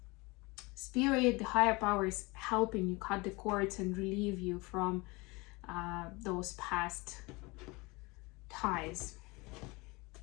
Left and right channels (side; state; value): right; quieter; 25.1 dB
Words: Spirit, the higher power, is helping you cut the cords and relieve you from those past ties.